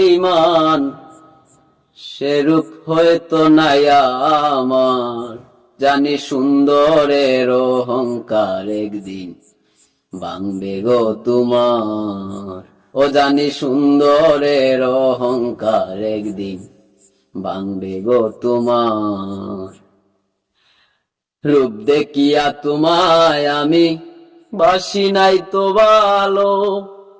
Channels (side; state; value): both; identical; correlation 1.00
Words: সে রূপ হয়তো নাই আমার। জানি সুন্দরের অহংকার একদিন ভাঙবে গো তোমার। ও জানি সুন্দরের অহংকার একদিন ভাঙবে গো তোমার। রূপ দেখিয়া তোমায় আমি বাসি নাই তো ভালো,